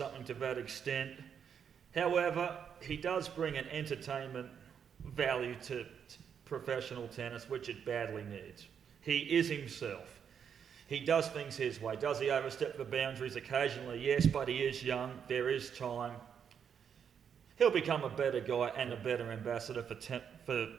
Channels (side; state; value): left; quieter; 7.6 dB